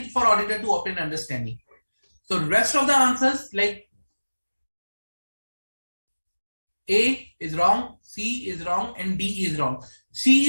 for auditor to obtain understanding. So rest of the answers like A is wrong, C is wrong, and D is wrong.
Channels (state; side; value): inverted; both; correlation -1.00